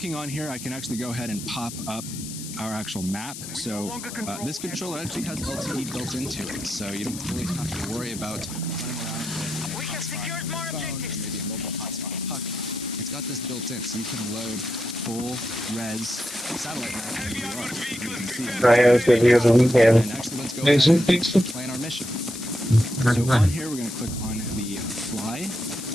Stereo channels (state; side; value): noise; left; hiss, 10 dB below the sound